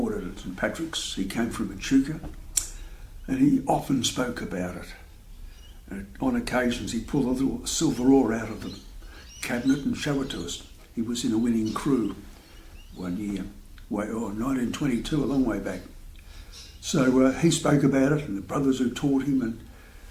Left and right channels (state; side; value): identical; both; correlation 1.00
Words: at St Patrick's. He came from Echuca and he often spoke about it. And on occasions he'd pull a little silver oar out of the cabinet and show it to us. He was in a winning crew one year, 1922, a long way back. So he spoke about it and the brothers who taught him, and